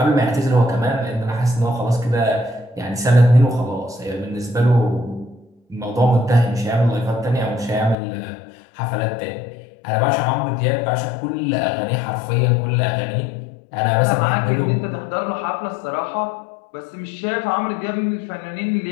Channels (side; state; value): right; drops out; at 8.0 s